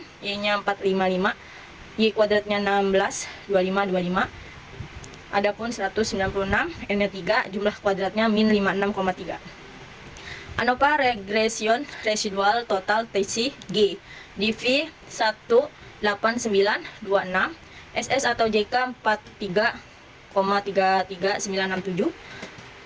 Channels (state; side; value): identical; both; correlation 1.00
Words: Y nya 455, Y kuadratnya 16 2525. Adapun 196, N nya 3, jumlah kuadratnya min 56,3. ANOVA regression residual total TC G DV 18926 SS atau JK 43,33967